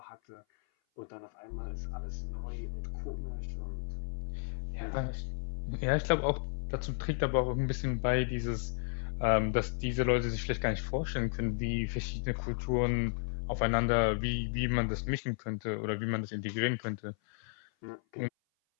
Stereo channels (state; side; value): silent; right; 55 dB below the other